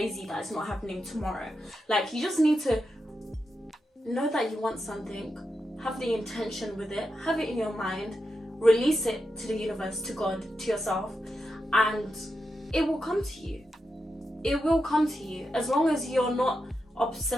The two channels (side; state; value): both; normal; correlation 0.87